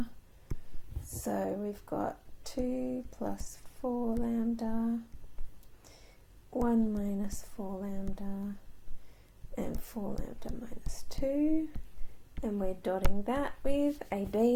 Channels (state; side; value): identical; both; correlation 1.00